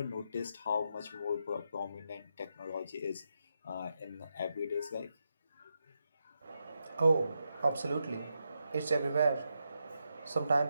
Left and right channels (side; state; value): both; inverted; correlation -0.84